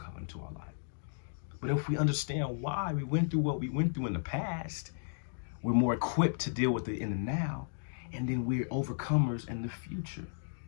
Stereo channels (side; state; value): right; silent; digital silence